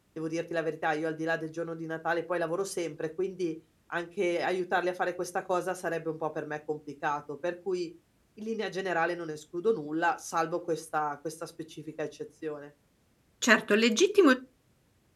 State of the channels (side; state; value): both; identical; correlation 1.00